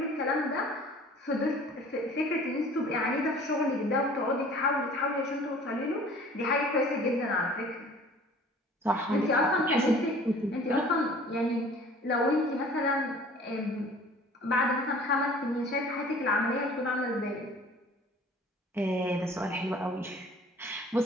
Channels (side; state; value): both; normal; correlation 0.49